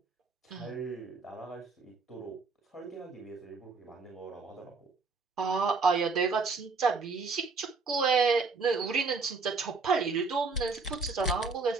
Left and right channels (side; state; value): left; quieter; 4.3 dB